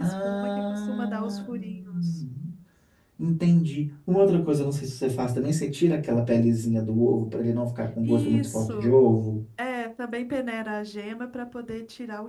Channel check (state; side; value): identical; both; correlation 1.00